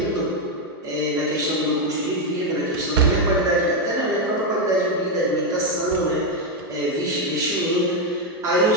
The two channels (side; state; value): both; normal; correlation 0.04